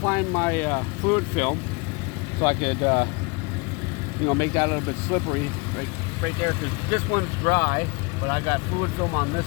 my fluid film so I could, make that a little bit slippery right there, because this one's dry, but I got fluid film on this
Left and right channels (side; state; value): right; quieter; 28.6 dB